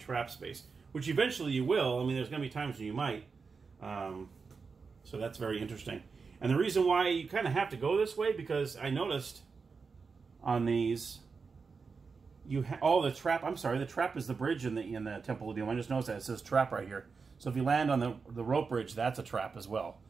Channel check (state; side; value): quieter; left; 5.0 dB